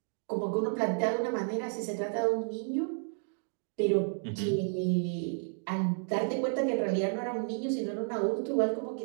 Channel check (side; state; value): left; silent; 57 dB below the other